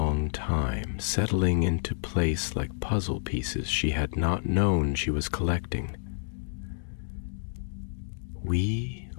time, settling into place like puzzle pieces she had not known she was collecting. "We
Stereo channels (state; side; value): silent; right; digital silence